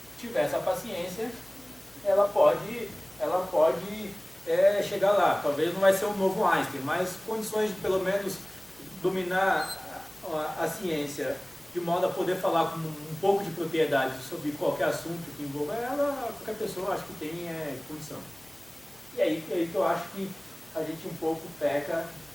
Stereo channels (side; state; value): left; noise; hum, 29 dB below the sound